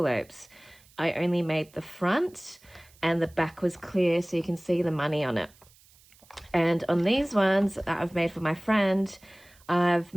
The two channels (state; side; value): noise; right; hiss, 28 dB below the sound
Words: I only made the front and the back was clear so you can see the money on it. And on these ones that I've made for my friend, I've